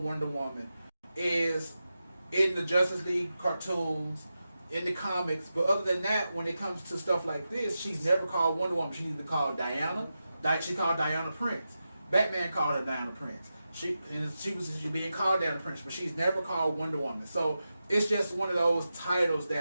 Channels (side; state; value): both; inverted; correlation -0.91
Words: Wonder Woman is in the Justice League cartoons, in the comics. But other than that, when it comes to stuff like this, she's never called Wonder Woman. She's either called Diana. She called Diana Prince. Batman called her Diana Prince. She was being called Diana Prince, but she's never called Wonder Woman. So it's just one of those titles